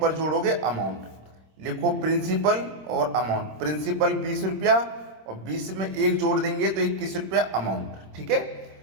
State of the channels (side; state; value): left; late; 26 ms